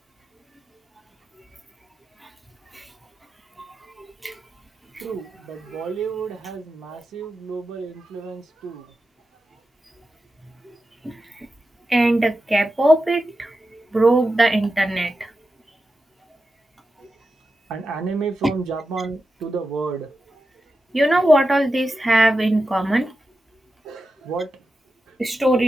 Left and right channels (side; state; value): both; normal; correlation 0.91